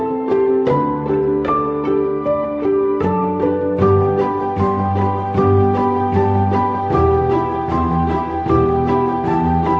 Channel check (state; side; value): identical; both; correlation 1.00